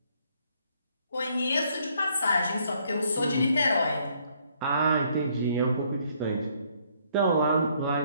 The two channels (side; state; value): both; inverted; correlation -0.67